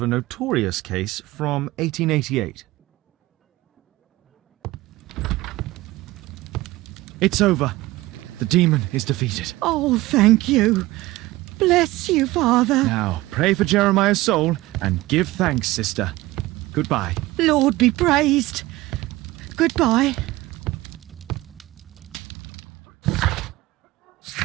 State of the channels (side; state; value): left; quieter; 18.6 dB